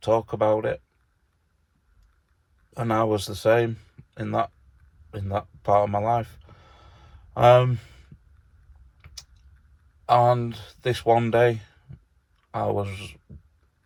talk about it. And I was the same in that part of my life. And this one day, I was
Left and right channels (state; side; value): identical; both; correlation 1.00